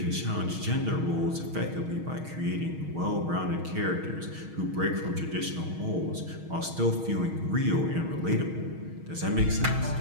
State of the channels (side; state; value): left; late; 6.3 ms